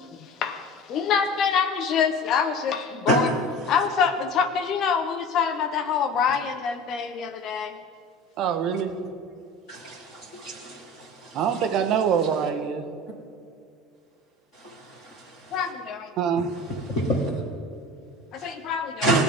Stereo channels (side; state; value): both; normal; correlation 0.37